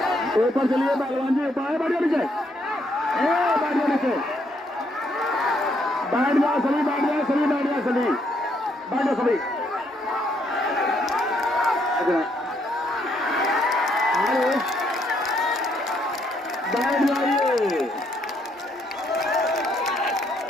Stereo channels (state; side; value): normal; both; correlation 0.72